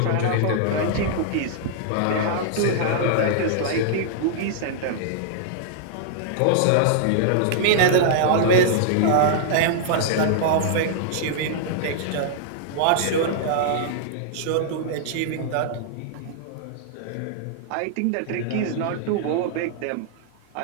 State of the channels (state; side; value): different; both; correlation -0.01